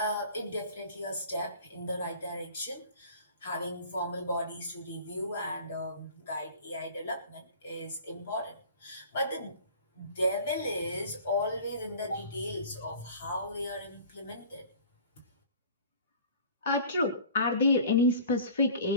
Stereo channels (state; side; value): inverted; both; correlation -0.44